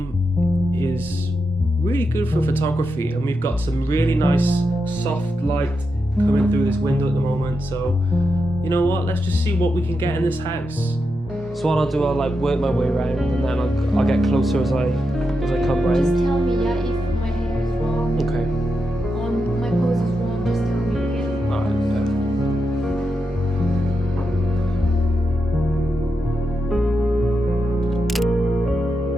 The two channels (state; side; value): normal; both; correlation 0.86